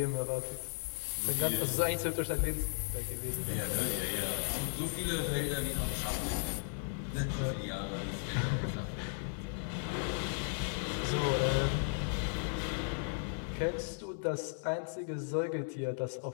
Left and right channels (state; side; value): silent; right; digital silence